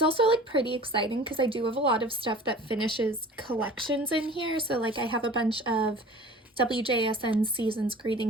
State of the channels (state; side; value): normal; both; correlation 0.43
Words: also like pretty exciting because I do have a lot of stuff that finishes collections in here. So like I have a bunch of WJSN Seasons